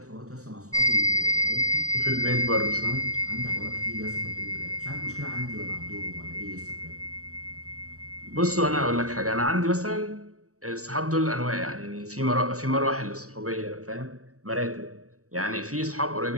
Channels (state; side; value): late; left; 0.65 ms